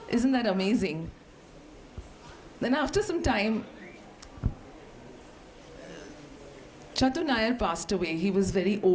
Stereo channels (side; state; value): both; identical; correlation 1.00